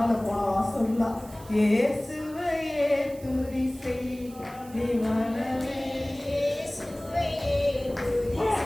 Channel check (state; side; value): noise; right; hiss, 21 dB below the sound